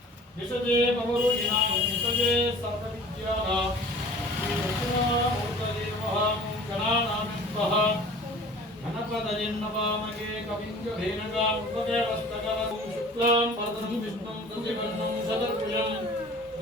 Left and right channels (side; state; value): both; normal; correlation 0.45